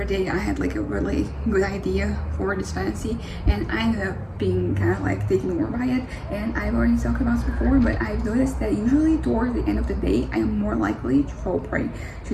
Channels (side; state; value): both; identical; correlation 1.00